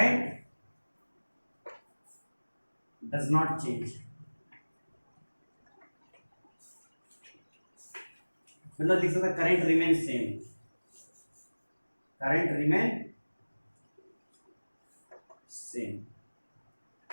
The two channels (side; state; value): both; inverted; correlation -1.00